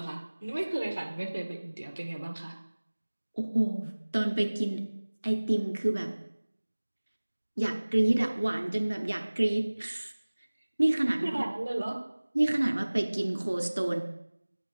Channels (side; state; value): both; inverted; correlation -1.00